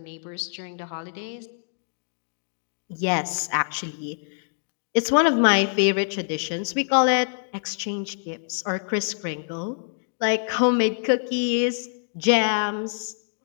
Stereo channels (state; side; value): silent; right; digital silence